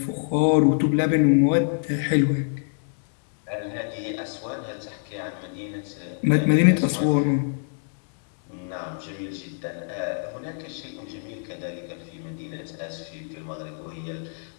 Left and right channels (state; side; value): silent; right; 61 dB below the other